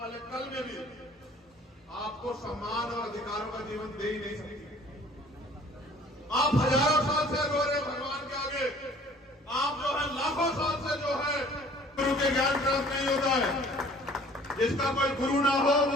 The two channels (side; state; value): both; normal; correlation 0.52